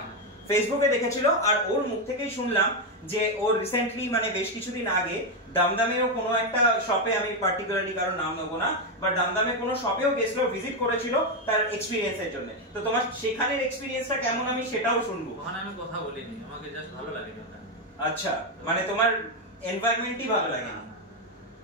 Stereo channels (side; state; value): both; normal; correlation 0.06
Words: ফেসবুকে দেখেছিল, আর ওর মুখ থেকেই শুনলাম যে ওর রিসেন্টলি মানে বেশ কিছুদিন আগে দমদমেও কোনো একটা শপে, আমি পার্টিকুলারলি কারো নাম নেবো না, বাট দমদমে কোনো শপেও গেছিল, ভিজিট করেছিল তার এক্সপেরিয়েন্সের জন্য। তো তোমার সেখানের এক্সপেরিয়েন্সটা কেমন আমি সেটাও শুনবো। ওখানে আমি কথা বলিনি, আমাকে জাস্ট ভালো লাগে ওখানে। আচ্ছা, মানে তোমার এনভায়রনমেন্টই ভালো লাগে।